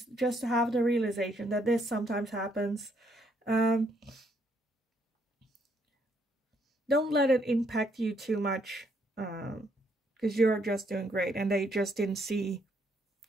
Just to have the realization that this sometimes happens. Don't let it impact you too much, because you're just doing great, and they just didn't see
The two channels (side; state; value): both; normal; correlation 0.72